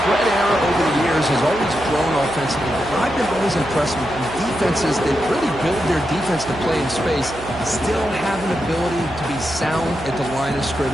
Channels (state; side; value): noise; right; hum, 14 dB below the sound